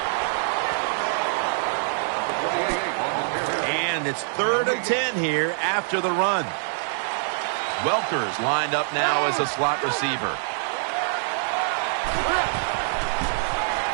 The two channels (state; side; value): silent; left; digital silence